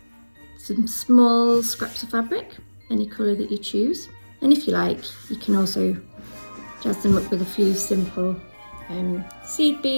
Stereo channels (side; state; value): both; inverted; correlation -1.00